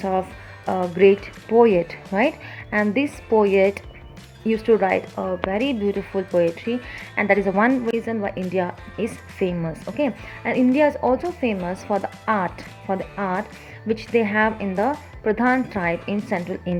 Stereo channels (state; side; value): identical; both; correlation 1.00